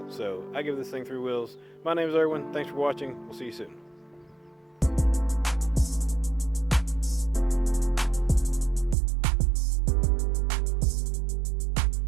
So I give this thing 3 wheels. My name is Erwin. Thanks for watching. We'll see you soon.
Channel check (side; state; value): left; drops out; at 9.0 s